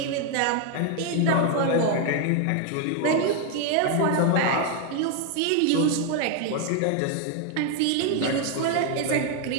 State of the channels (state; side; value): different; both; correlation 0.01